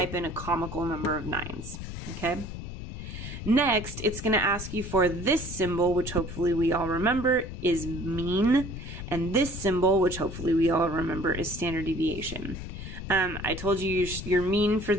in a comical number of 9s. Okay. Next, it's going to ask you for this symbol, which hopefully we all remember is mean. And this symbol, which hopefully we all remember, is standard deviation. I told you your mean for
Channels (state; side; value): noise; left; rumble, 8 dB below the sound